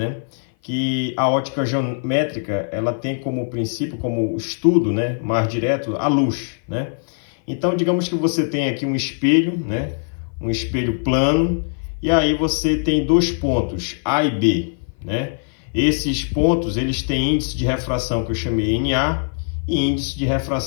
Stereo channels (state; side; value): silent; right; 57 dB below the other